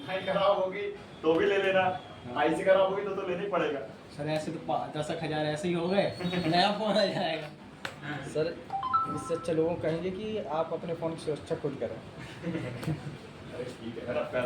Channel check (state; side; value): identical; both; correlation 1.00